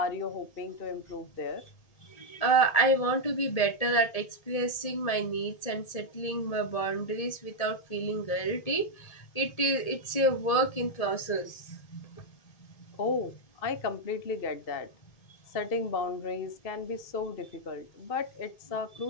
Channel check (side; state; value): right; late; 1.8 ms